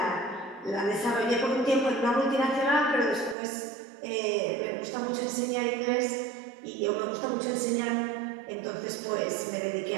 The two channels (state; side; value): drops out; left; at 3.4 s